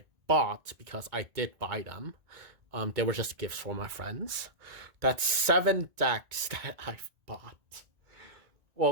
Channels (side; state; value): left; late; 1.9 ms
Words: bought, because I did buy them, they were just gifts for my friends. That's 7 decks that I've bought.